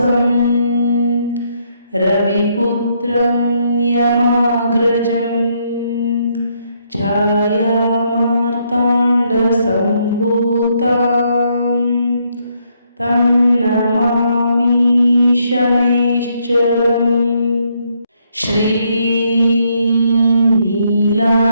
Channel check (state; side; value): inverted; both; correlation -0.74